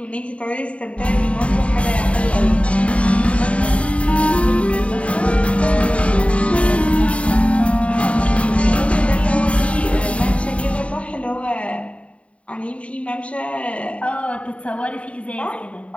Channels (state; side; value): late; right; 0.063 ms